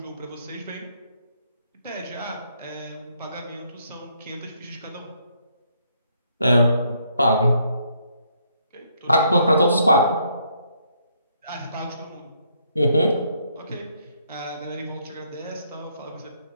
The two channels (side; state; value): both; inverted; correlation -0.71